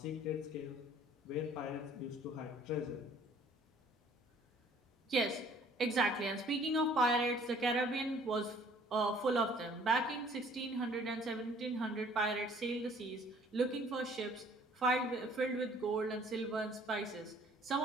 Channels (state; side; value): normal; both; correlation 0.56